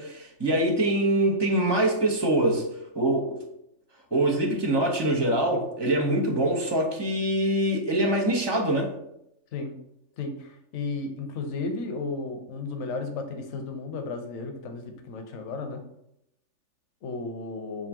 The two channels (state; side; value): late; right; 3.4 ms